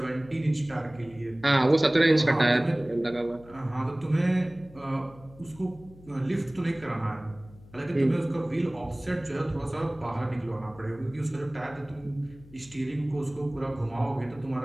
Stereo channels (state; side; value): noise; left; hum, 22 dB below the sound